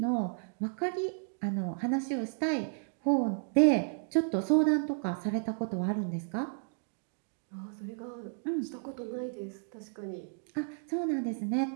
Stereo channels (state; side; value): silent; left; digital silence